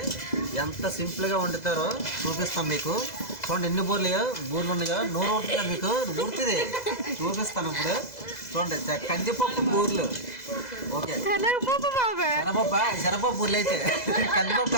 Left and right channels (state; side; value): late; right; 2.0 ms